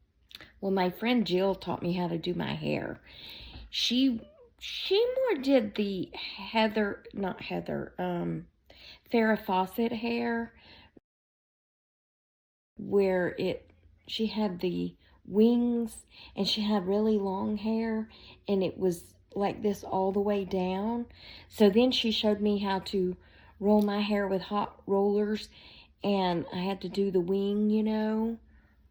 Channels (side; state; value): both; identical; correlation 1.00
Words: Well, my friend Jill taught me how to do my hair. She more did the Farrah Fawcett hair, where she had the wings and she had really long hair and it was like this all the way down. So then she showed me how to roll my hair with hot rollers, and I had to do the wing, you know.